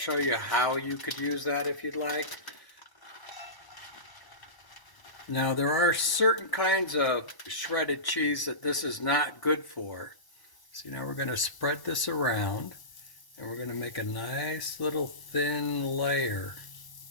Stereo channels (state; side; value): late; right; 1.0 ms